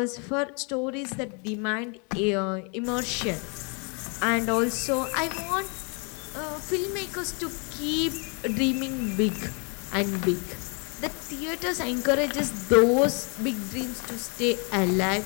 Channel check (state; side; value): quieter; right; 35.4 dB